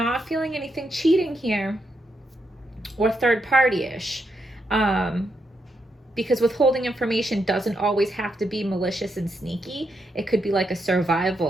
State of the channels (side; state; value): both; normal; correlation 0.81